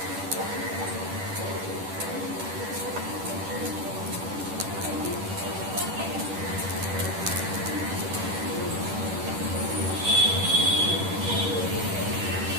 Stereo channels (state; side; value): late; left; 10 ms